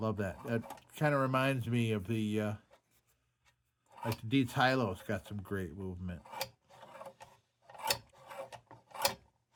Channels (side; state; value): both; identical; correlation 1.00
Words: that. That kind of reminds me of the Dietz Hylo's got some great movement.